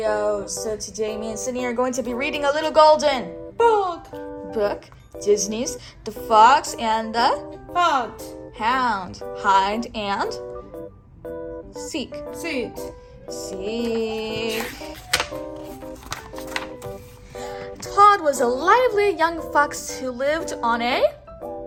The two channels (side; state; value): both; identical; correlation 1.00